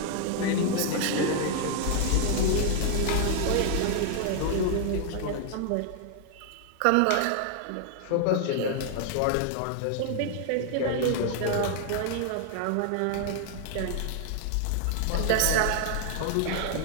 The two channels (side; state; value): both; different; correlation 0.00